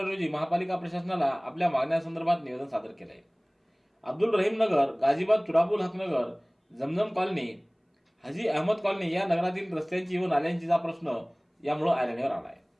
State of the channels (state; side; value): identical; both; correlation 1.00